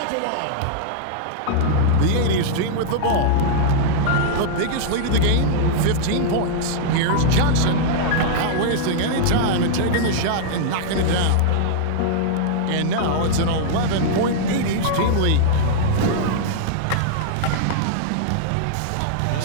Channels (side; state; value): both; different; correlation -0.01